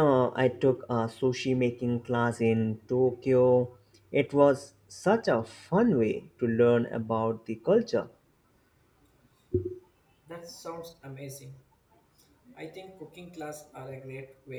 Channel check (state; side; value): identical; both; correlation 1.00